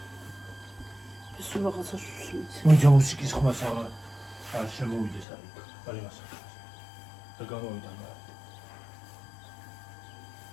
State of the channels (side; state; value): right; drops out; at 5.2 s